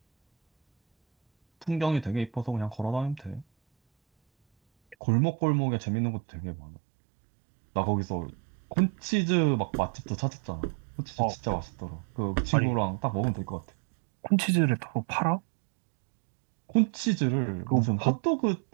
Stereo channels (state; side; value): drops out; left; at 5.0 s